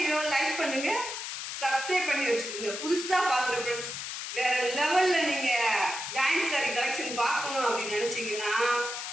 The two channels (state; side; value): noise; left; hiss, 6 dB below the sound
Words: லைக் பண்ணுங்க, சப்ஸ்கிரைப் பண்ணி வச்சுக்கோங்க. புதுசா பாக்குற ஃப்ரெண்ட்ஸ் வேற லெவல்ல நீங்க ஜாயிண்ட் சாரி கலெக்ஷன் பார்க்கணும் அப்படின்னு நினைச்சீங்கன்னா